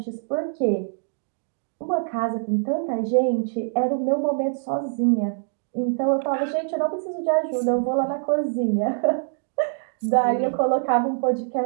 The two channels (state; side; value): silent; left; digital silence